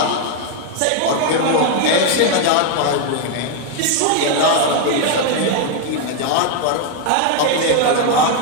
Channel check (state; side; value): different; both; correlation 0.00